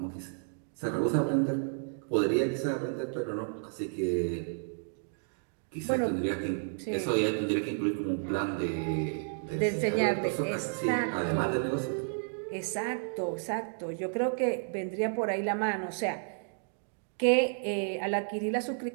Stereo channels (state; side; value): silent; left; digital silence